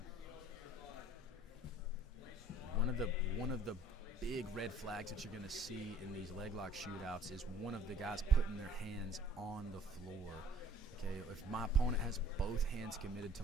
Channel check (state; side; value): normal; both; correlation 0.54